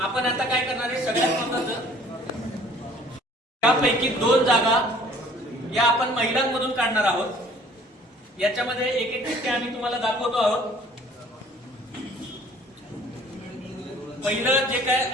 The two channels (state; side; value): normal; both; correlation 0.54